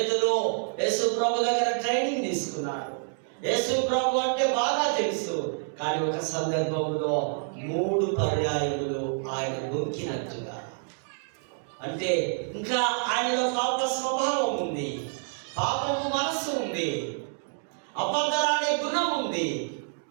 యేసు ప్రభు దగ్గర ట్రైనింగ్ తీసుకున్నాడు. యేసు ప్రభు అంటే బాగా తెలుసు. కానీ ఒక సందర్భంలో 3 పర్యాయములు ఆయన బొక్కినట్టుగా, అంటే ఇంకా ఆయనలో పాప స్వభావం ఉంది, పాపము మనస్సు ఉంది, అబద్ధాలనే గుణం ఉంది,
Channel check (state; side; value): silent; left; 59 dB below the other